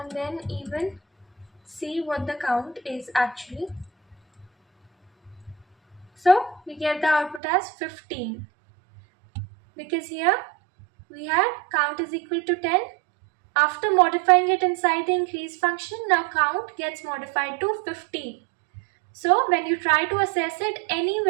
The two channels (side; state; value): left; drops out; at 7.4 s